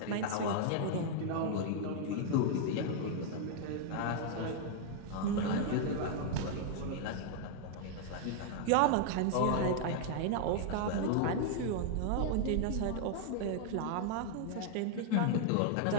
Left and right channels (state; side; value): different; both; correlation 0.00